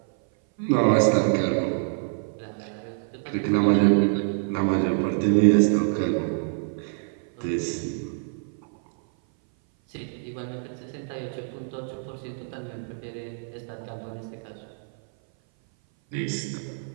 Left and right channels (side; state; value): left; silent; 57 dB below the other